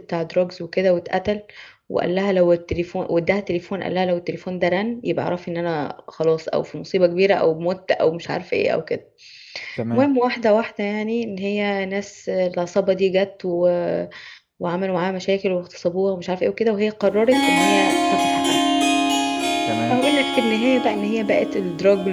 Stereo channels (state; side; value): identical; both; correlation 1.00